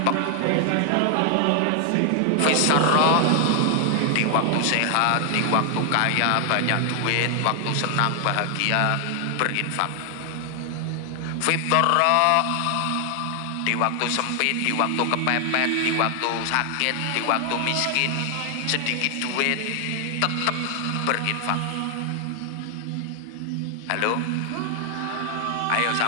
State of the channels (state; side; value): different; both; correlation 0.00